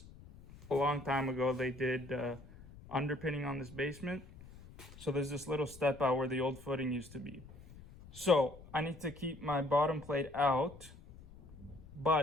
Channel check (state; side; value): noise; left; rumble, 19 dB below the sound